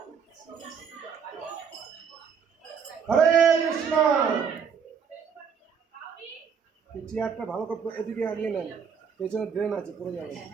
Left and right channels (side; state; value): left; quieter; 6.6 dB